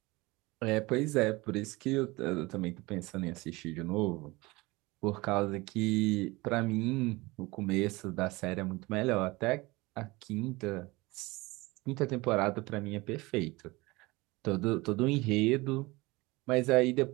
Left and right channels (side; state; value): left; quieter; 22.5 dB